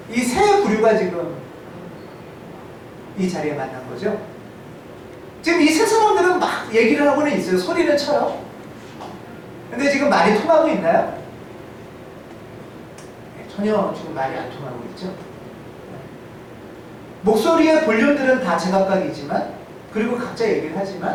이 세 부류가 지금 이 자리에 만난 거죠. 지금 이 세 사람들은 막 얘기를 하고는 있어요. 소리는 쳐요. 근데 지금 말이 통하고 있나요? 전혀 지금 말이 안 통하고 있죠. 목소리의 볼륨들은 다 제각각이지만 그리고 각자 얘기를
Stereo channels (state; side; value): identical; both; correlation 1.00